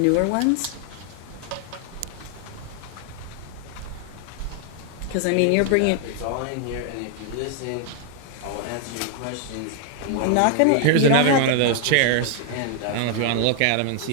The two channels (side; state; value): both; different; correlation 0.00